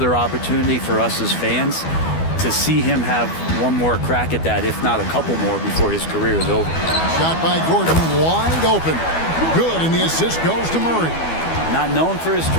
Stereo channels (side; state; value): right; late; 12 ms